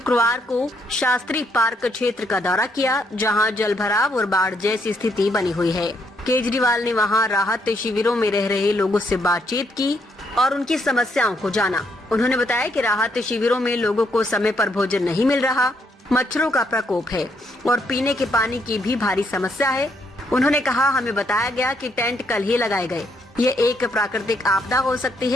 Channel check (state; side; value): normal; both; correlation 0.73